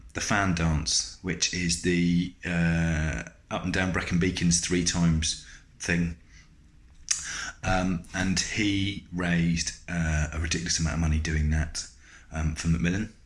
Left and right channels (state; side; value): identical; both; correlation 1.00